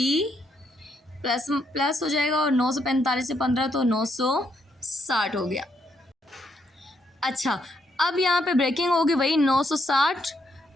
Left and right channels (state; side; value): normal; both; correlation 0.75